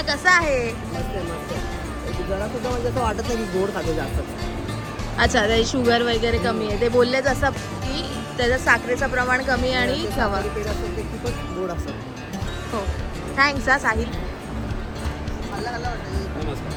कसा आहे? मस्त आहे मस्त आहे. जरा सुद्धा म्हणजे असं वाटत नाही की गोड खातो जास्त. अच्छा ते शुगर वगैरे कमी आहे. ते बोललेच असं की त्याचं साखरेचं प्रमाण कमी आहे आणि खवा. पेढा असतो ते खूपच गोड असतात. हो थँक्स हा साहिल.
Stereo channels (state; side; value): identical; both; correlation 1.00